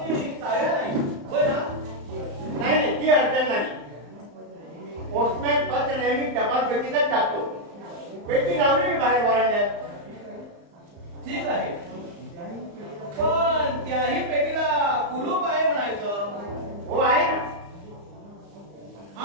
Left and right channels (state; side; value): late; left; 35 ms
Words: चाव्या नाही. होय ना. नाही नाही ती अडचण नाही. पोस्टमॅन पत्र नेहमी टपाल पेटीतच टाकतो. पेटी लावली मी बाहेर वरांड्यात. ठीक आहे पण त्याही पेटीला कुलूप आहे म्हणायचं. हो आहे ना.